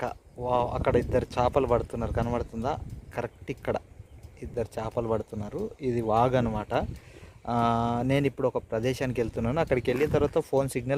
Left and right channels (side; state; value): both; identical; correlation 1.00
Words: వా, అక్కడ ఇద్దరు చేపలు పడుతున్నారు, కనబడుతుందా? కరెక్ట్ ఇక్కడ ఇద్దరు చేపలు పడుతున్నారు. ఇది వాగ్ అనమాట. నేను ఇప్పుడు ఒక ప్రదేశానికి వెళ్తున్నాను. అక్కడికి వెళ్ళిన తర్వాత ఫోన్